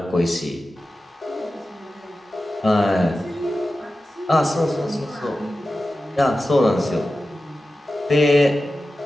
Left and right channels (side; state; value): both; normal; correlation 0.94